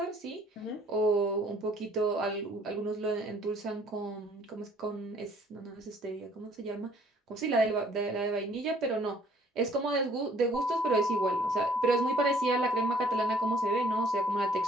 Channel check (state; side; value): normal; both; correlation 0.59